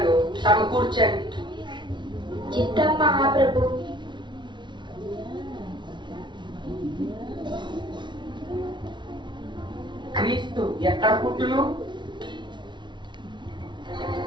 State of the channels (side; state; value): left; late; 0.23 ms